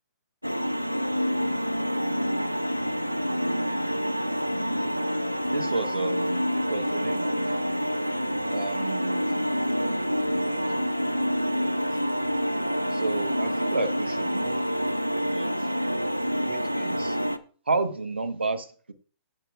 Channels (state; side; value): inverted; both; correlation -0.94